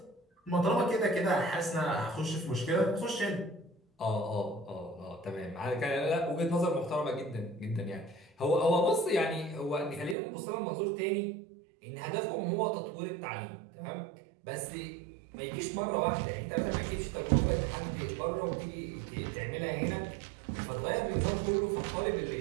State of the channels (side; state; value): left; drops out; at 10.2 s